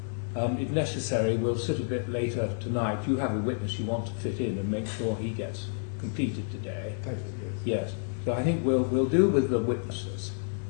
If necessary, we'll sit a bit later tonight. You have a witness you want to fit in and make sure he gets completed today. Thank you. Yes. So I think we'll do with the witnesses,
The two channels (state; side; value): silent; right; digital silence